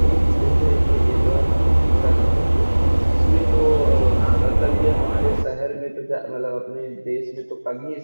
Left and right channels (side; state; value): both; inverted; correlation -1.00